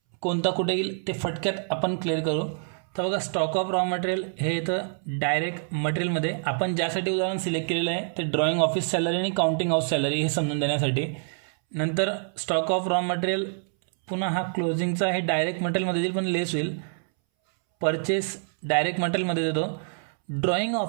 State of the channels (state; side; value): silent; left; 61 dB below the other